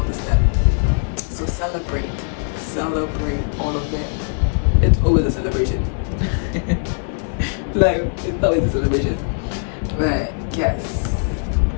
the step. So celebrate all of them. It's always a celebration. Like, it's always a celebration. But yes,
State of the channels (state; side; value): silent; right; 61 dB below the other